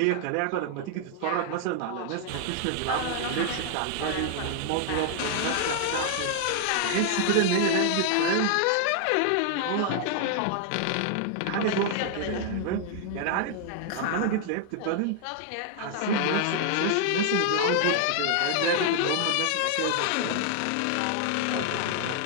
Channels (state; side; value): different; both; correlation 0.00